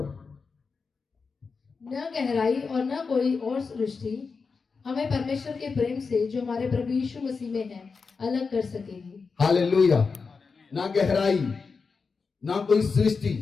न गहराई और न कोई और सृष्टि हमें परमेश्वर के प्रेम से जो हमारे प्रभु यीशु मसीह में है अलग कर सकेगी। हालेलुया। ना गहराई, ना कोई सृष्टि,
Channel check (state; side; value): quieter; right; 4.9 dB